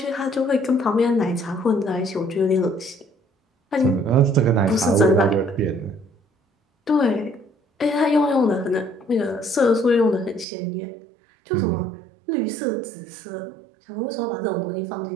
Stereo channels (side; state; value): left; drops out; at 10.5 s